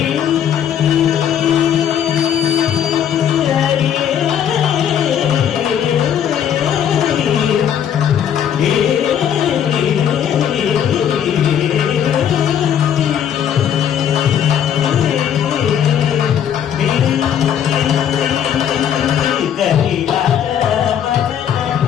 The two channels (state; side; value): quieter; right; 9.2 dB